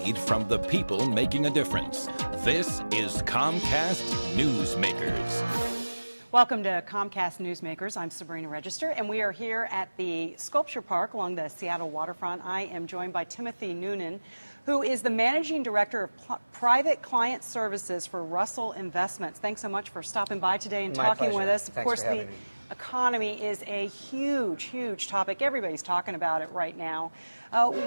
from the people making a difference. This is Comcast Newsmakers. Welcome to Comcast Newsmakers. I'm Sabrina Register, and we are here at the Sculpture Park along the Seattle waterfront. I am joined by Timothy Noonan, who is the Managing Director of Private Client Services for Russell Investments. Thanks so much for stopping by today and talking with us. Of course, the economy is a huge, huge topic. Everybody's talking about it right now.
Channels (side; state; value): both; inverted; correlation -1.00